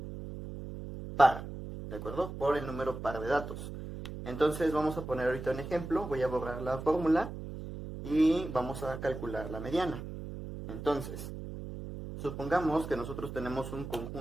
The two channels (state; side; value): noise; right; hum, 9 dB below the sound